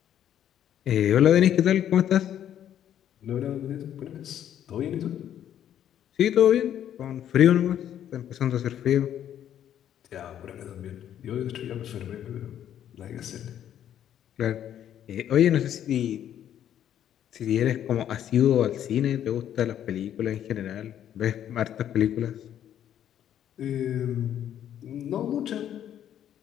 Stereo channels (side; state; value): right; quieter; 10.4 dB